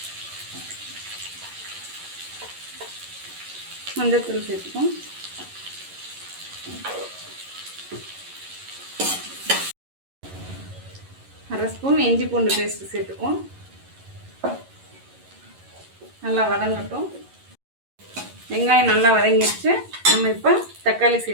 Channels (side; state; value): left; late; 11 ms